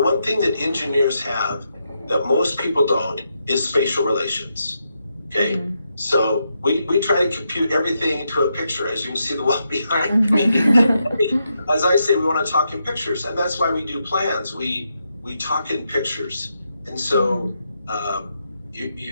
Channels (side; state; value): both; inverted; correlation -0.82